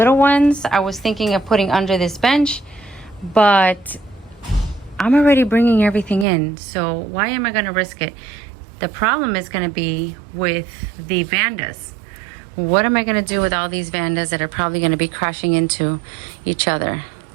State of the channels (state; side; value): drops out; left; at 6.2 s